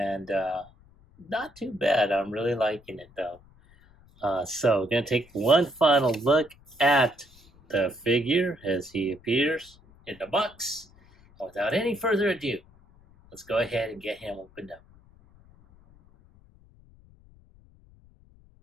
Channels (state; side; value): noise; left; rumble, 27 dB below the sound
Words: not too bad. I'm really liking it though. So we're going to take one final look at the figure as he appears in the box. And without any further ado, let's go ahead and get him opened up.